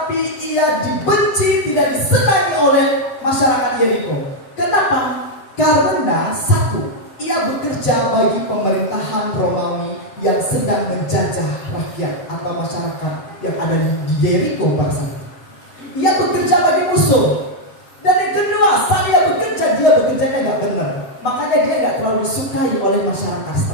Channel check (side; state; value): right; late; 7.2 ms